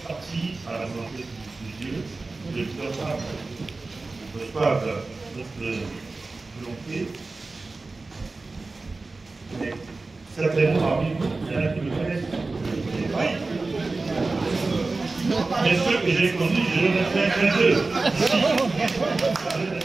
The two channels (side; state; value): left; quieter; 3.6 dB